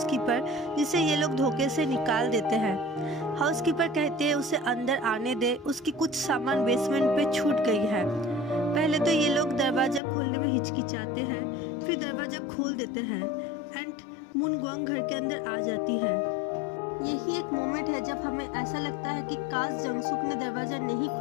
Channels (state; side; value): drops out; right; at 10.0 s